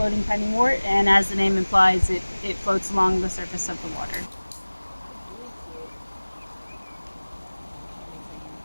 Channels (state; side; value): inverted; both; correlation -1.00